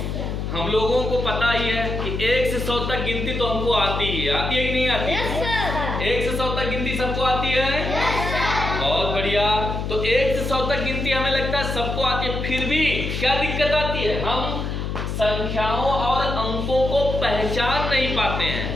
हम लोगों को पता ही है कि 1 से 100 तक गिनती तो हमको आती ही है, आती है कि नहीं आती है? 1 से 100 तक गिनती सबको आती है? बहुत बढ़िया। तो 1 से 100 तक गिनती हमें लगता है सबको आती है, फिर भी क्या दिक्कत आती है? हम संख्याओं और अंकों को पहचान नहीं पाते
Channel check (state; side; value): noise; left; hum, 3 dB below the sound